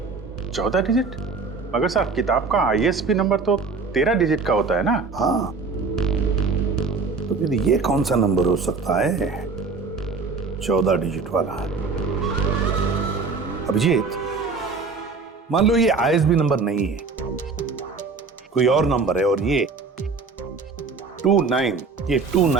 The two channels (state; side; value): quieter; left; 4.5 dB